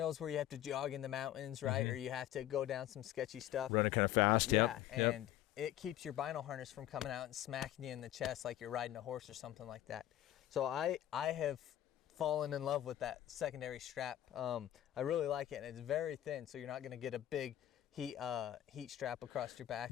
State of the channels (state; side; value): quieter; right; 12.8 dB